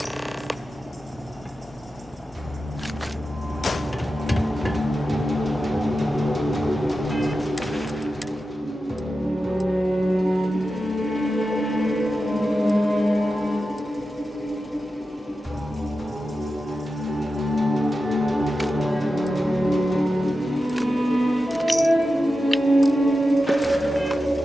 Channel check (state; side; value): normal; both; correlation 0.92